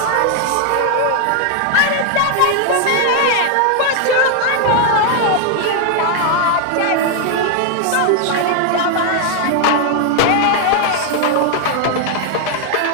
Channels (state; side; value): different; both; correlation 0.00